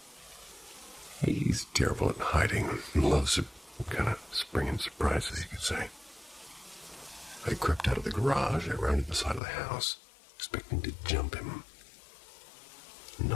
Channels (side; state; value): right; drops out; at 9.4 s